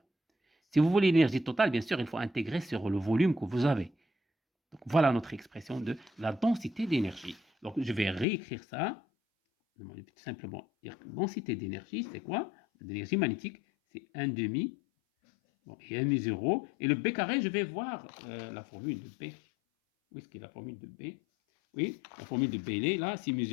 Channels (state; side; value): drops out; right; at 8.2 s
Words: Si vous voulez l'énergie totale, bien sûr, il faut intégrer sur le volume que vous avez. Donc, voilà notre expression de la densité d'énergie. Donc, je vais réécrire ça. Tout simplement dire que densité d'énergie, c'est quoi? L'énergie magnétique, c'est 1 demi, bon, et mu 0. Et le B carré, je vais voir la formule de B. Où est-ce qu'il y a la formule de B? Oui, la formule de B, elle est là. C'est mu